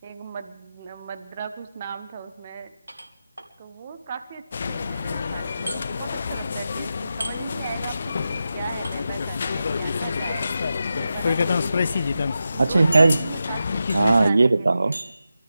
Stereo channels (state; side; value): inverted; both; correlation -0.90